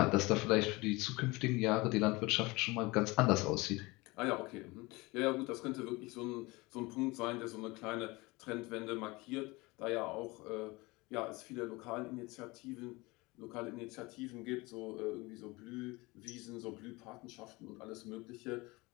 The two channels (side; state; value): right; quieter; 23.4 dB